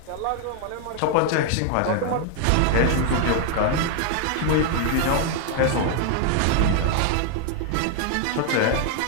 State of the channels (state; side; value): different; both; correlation 0.00